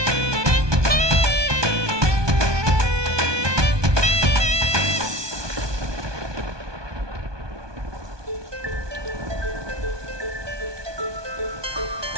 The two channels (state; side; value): late; left; 1.2 ms